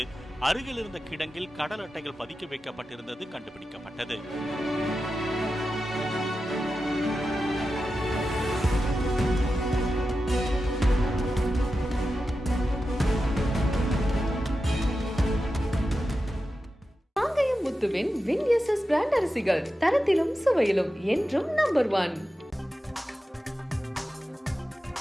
அருகில் இருந்த கிடங்கில் கடல் அட்டைகள் பதுக்கி வைக்கப்பட்டிருந்தது கண்டுபிடிக்கப்பட்டது. முத்துவின் வின்எஸ்எஸ் பிராண்ட் அரிசிகள் தரத்திலும் சுவையிலும் என்றும் நம்பர் 1.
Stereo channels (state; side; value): normal; both; correlation 0.91